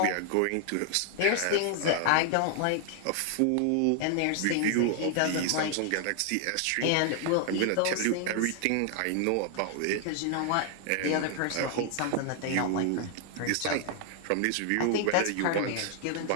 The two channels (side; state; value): both; different; correlation 0.00